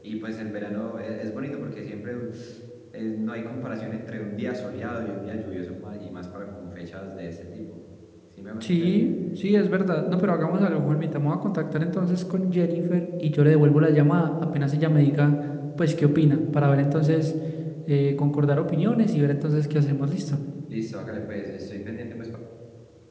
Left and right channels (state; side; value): identical; both; correlation 1.00